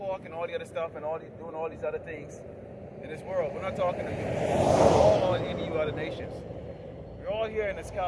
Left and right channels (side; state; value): both; identical; correlation 1.00